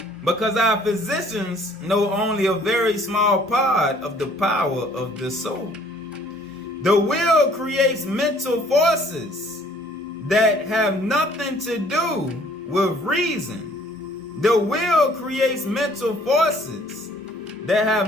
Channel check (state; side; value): normal; both; correlation 0.58